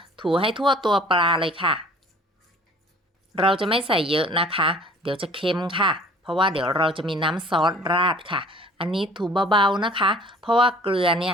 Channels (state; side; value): normal; both; correlation 0.50